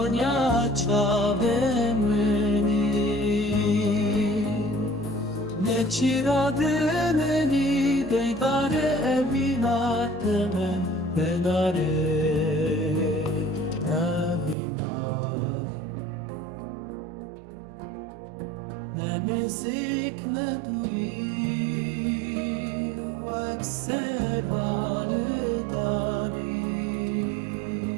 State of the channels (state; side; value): drops out; left; at 14.6 s